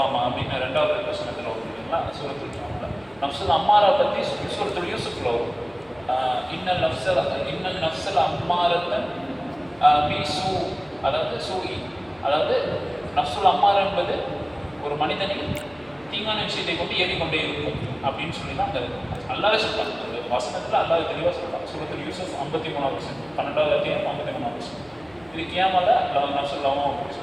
அப்படின்னு 2வது வசனத்தில் வரும் இல்லைங்களா, சூரத்துல் கியாமாவில். நஃப்சுல் அம்மாரா பற்றி சூரத்துல் யூசுஃபில் வரும், இன்னல் நஃப்சல் அம்மாரத்தன் பீசு, அதாவது சூஇ, அதாவது நஃப்சுல் அம்மாரா என்பது ஒரு மனிதனில் தீங்கான விஷயத்தை கொண்டு ஏறிக்கொண்டே இருக்கும் அப்படின்னு சொல்லி தான் அந்த அல்லாஹ் சொல்றான். அந்த வசனத்தில் அல்லாஹ் தெளிவாக சொல்றான். சூரத்துல் யூசுஃப் 53வது வசனம், 12வது அத்தியாயம் 53வது வசனம். இது கியாமால நஃப்சுல் லவாமா அப்படின்னு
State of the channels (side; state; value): left; noise; hum, 28 dB below the sound